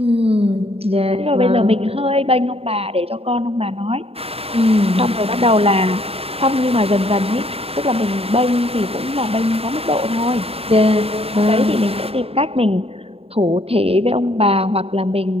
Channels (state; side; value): late; left; 0.28 ms